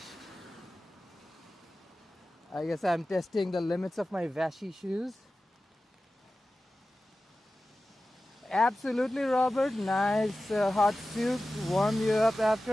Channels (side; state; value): both; normal; correlation 0.95